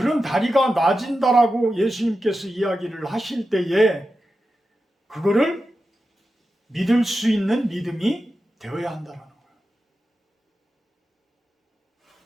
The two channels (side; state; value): both; normal; correlation 0.91